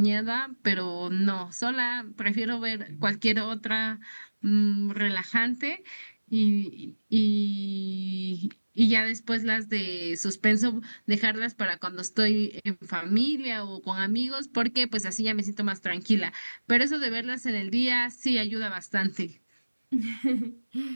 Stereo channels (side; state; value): both; inverted; correlation -1.00